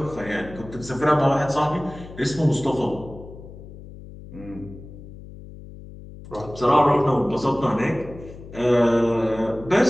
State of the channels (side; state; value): left; noise; hum, 16 dB below the sound